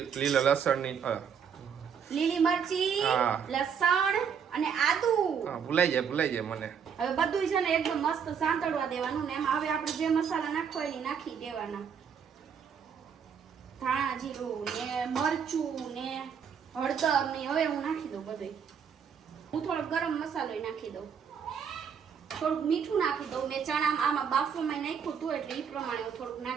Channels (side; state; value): left; quieter; 7.2 dB